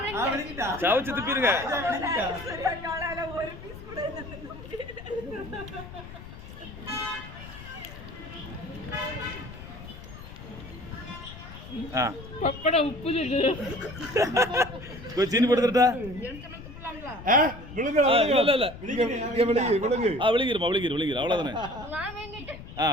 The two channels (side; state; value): left; noise; rumble, 14 dB below the sound